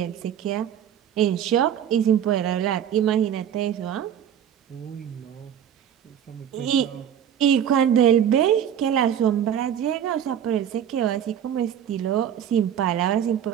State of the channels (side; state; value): left; quieter; 9.4 dB